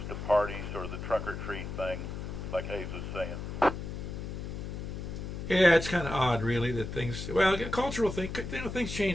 to parties or the trunk or treat thing, like Hayes was saying. Yeah, it's kind of odd, really, that things. Well, cultural thing. Things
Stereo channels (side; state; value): left; noise; hum, 6 dB below the sound